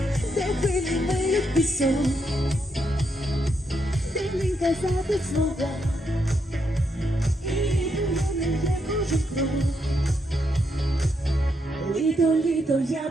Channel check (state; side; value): normal; both; correlation 0.79